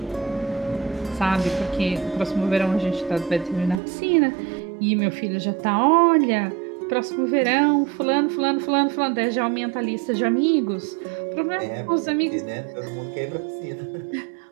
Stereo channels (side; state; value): left; drops out; at 3.8 s